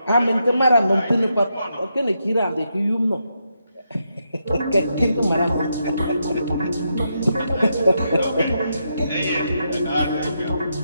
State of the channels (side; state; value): both; inverted; correlation -0.82